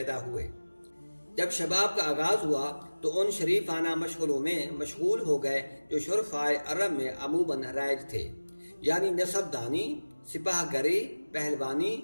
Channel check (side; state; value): both; inverted; correlation -1.00